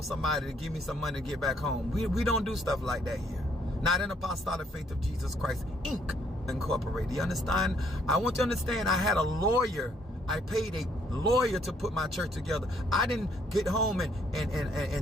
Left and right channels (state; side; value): normal; both; correlation 0.67